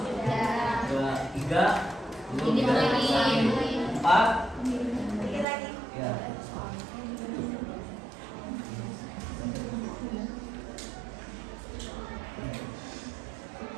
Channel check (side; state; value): left; drops out; at 5.5 s